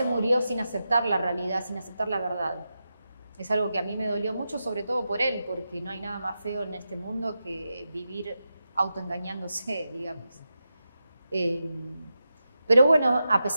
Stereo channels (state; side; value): inverted; both; correlation -0.89